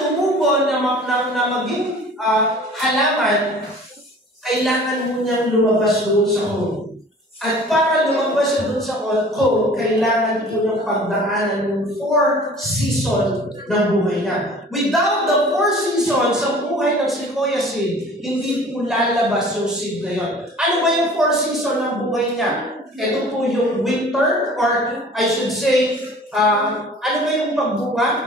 na maging halaman, kailangan mo niyang lumabas doon sa cone. At para lumabas siya doon sa cone, kailangan po niyang pagdaanan ng 4 seasons ng buhay niya. Without the 4 seasons sa buhay ng sequoia seed, hindi po lalabas yung seed na yun. Ano ba yung 4 seasons ng buhay niya? Ito po yung winter, or I should say, ano ba yung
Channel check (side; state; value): both; normal; correlation 0.47